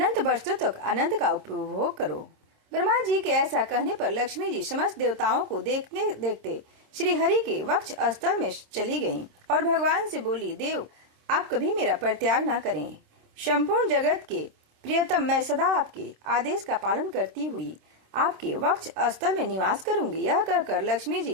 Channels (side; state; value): left; late; 26 ms